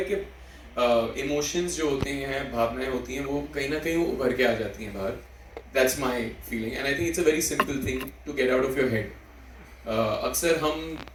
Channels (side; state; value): both; identical; correlation 1.00